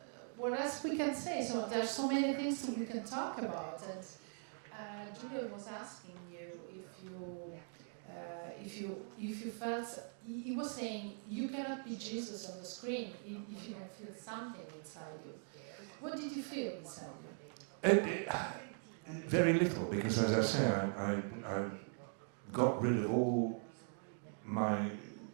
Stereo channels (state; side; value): silent; left; 50 dB below the other